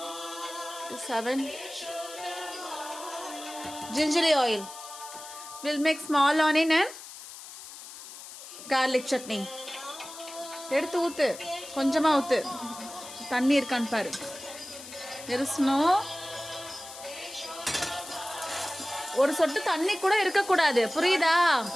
7 gingerly oil. We'll make small onion and garlic chutney. எடுத்து ஊத்து. கொஞ்சமாக ஊற்று. தண்ணி இருக்கான்னு பாரு. இருசணும். ஒரு சொட்டு தண்ணி கூட இருக்கக்கூடாது, புரியுதா?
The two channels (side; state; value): left; noise; hiss, 14 dB below the sound